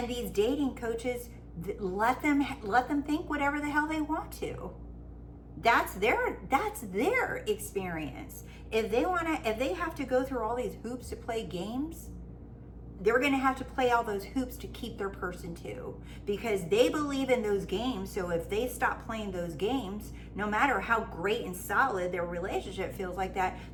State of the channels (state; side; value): identical; both; correlation 1.00